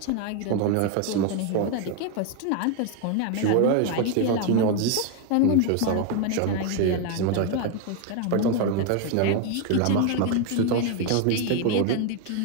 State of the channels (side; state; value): both; different; correlation 0.01